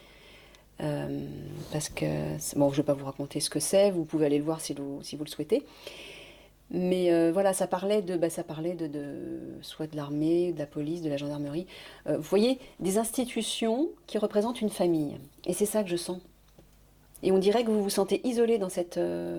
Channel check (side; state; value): both; identical; correlation 1.00